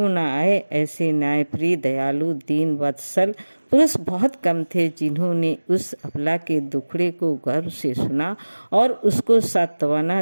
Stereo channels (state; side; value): inverted; both; correlation -1.00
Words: ना आए। ऐसे न्यायप्रिय, दयालु, दीन वत्सल पुरुष बहुत कम थे जिन्होंने उस अबला के दुखड़े को गर्व से सुना और उसको सांत्वना